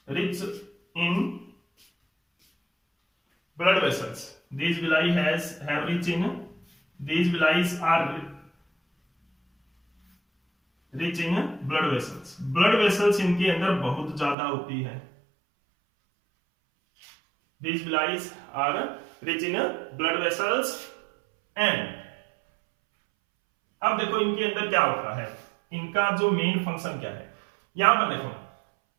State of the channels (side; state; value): left; drops out; at 14.4 s